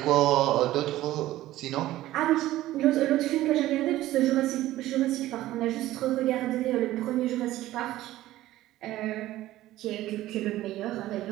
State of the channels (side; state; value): left; quieter; 15.3 dB